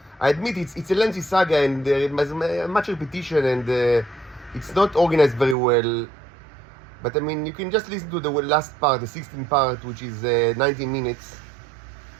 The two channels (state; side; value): drops out; left; at 5.6 s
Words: I admit it's a lengthy saga, and there is much repetition, and it's not organized very well. But you can just listen to the last part, the 16th part, which is 19 minutes.